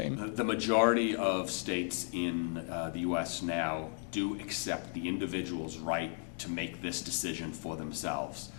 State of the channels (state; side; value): silent; right; 54 dB below the other